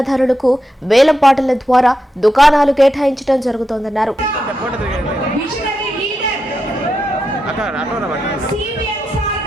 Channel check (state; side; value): normal; both; correlation 0.86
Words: వేలం పాటల ద్వారా దుకాణాలు కేటాయించడం జరుగుతోందన్నారు.